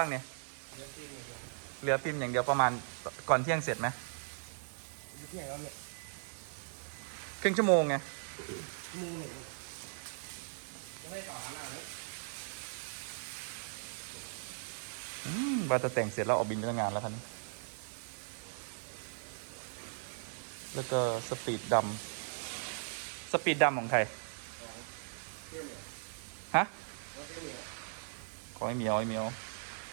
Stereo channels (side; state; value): left; silent; digital silence